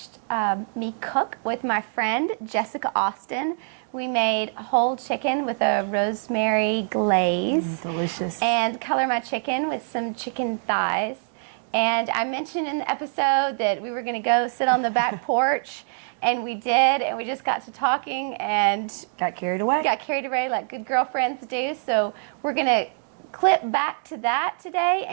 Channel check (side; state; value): left; silent; digital silence